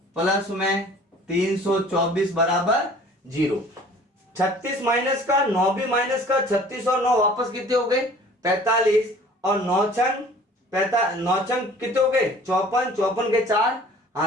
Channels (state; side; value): normal; both; correlation 0.49